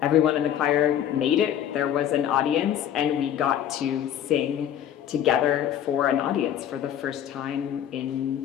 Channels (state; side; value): quieter; right; 10.2 dB